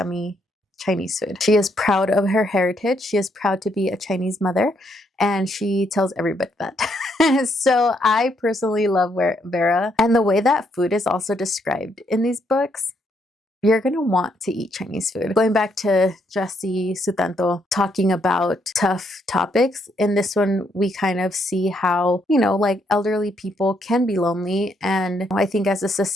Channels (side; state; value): both; normal; correlation 0.74